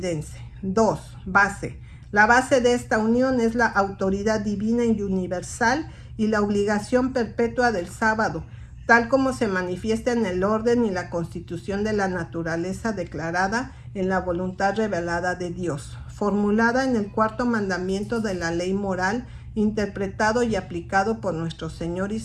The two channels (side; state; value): both; identical; correlation 1.00